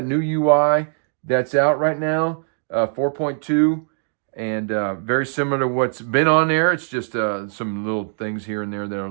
new UI that's out right now, 4.2, and very similar to what's been on there. It's just some little things here and there that are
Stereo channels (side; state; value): left; silent; digital silence